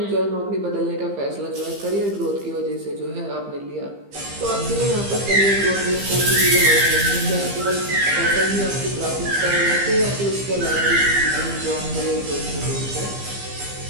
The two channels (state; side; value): late; left; 15 ms